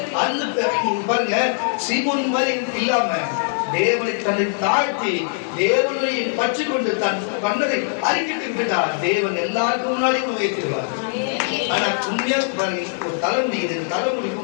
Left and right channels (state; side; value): silent; right; 65 dB below the other